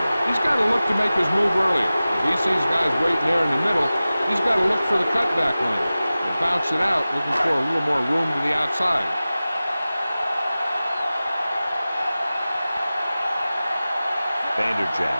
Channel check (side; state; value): both; inverted; correlation -0.96